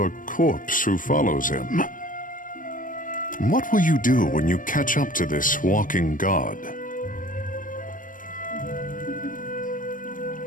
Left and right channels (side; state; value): right; late; 0.39 ms